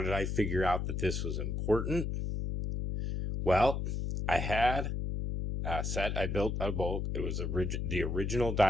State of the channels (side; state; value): left; noise; hum, 2 dB below the sound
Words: I figure out that this was important? Well, I had a set I built out of bulk. It was the original